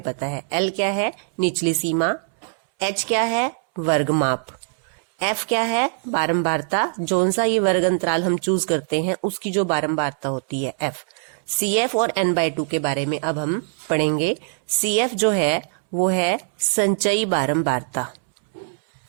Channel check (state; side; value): silent; left; 64 dB below the other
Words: पता है, L क्या है? निचली सीमा। H क्या है? वर्गमाप। F क्या है? बारंबारता। जोन सा ये वर्ग अंतराल हम चूज करते हैं उसकी जो बारंबारता होती है F। CF और n/2 के बारे में अब हम पढ़ेंगे। CF जो है वो है संचयी बारंबारता।